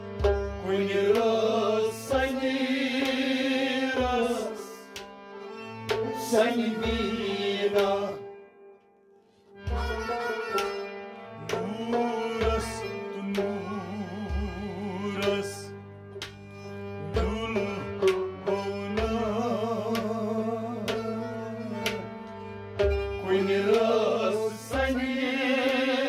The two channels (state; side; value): identical; both; correlation 1.00